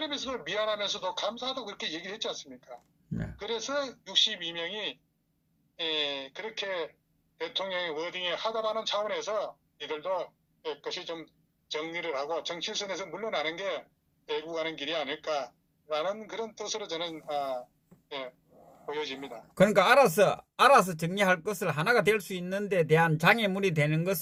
미안하면서도 감사하다고 그렇게 얘기를 했지 않습니까? 네. 그래서 62명이 그렇게 대통령의 워딩에 하다라는 차원에서 이들도 그것이 좀 정리를 하고 정치선에서 물러나는 게 애국하는 길이 아닐까라는 그런 뜻으로 저는 보여집니다. 그러니까 알아서 정리할 것을 하나가 될 수 있는 데 대한 장애물이 되는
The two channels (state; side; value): identical; both; correlation 1.00